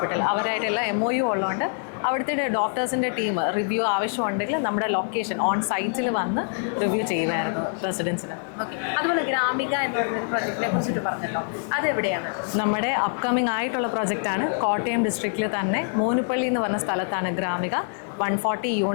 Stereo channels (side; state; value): right; silent; 61 dB below the other